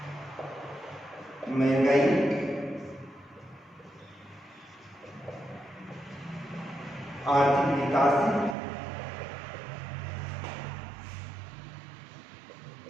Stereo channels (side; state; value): left; drops out; at 8.6 s